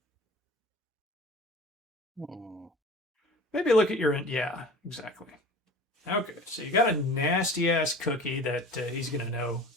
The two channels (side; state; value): both; normal; correlation 0.40